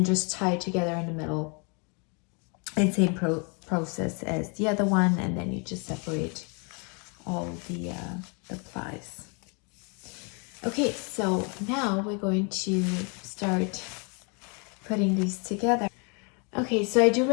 just tie it together in the middle, and same process as the other one, and then you just separate all the plies. Okay, so now we're going to start putting these together. Okay, so I do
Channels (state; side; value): quieter; right; 34.8 dB